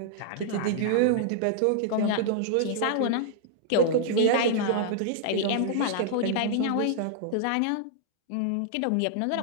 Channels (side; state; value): both; different; correlation -0.01